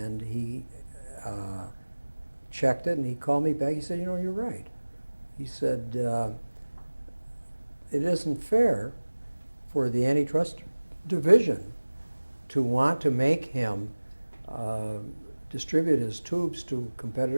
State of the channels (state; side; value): inverted; both; correlation -1.00